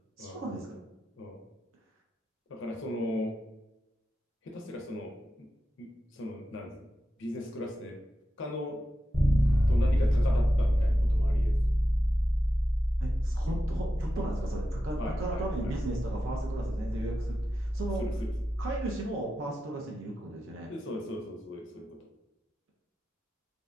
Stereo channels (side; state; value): both; normal; correlation 0.91